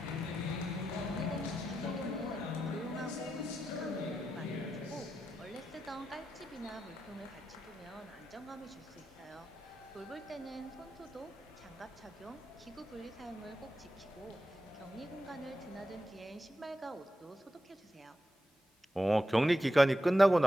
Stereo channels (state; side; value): normal; both; correlation 0.89